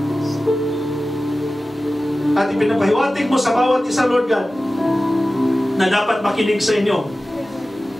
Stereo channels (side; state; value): both; normal; correlation 0.96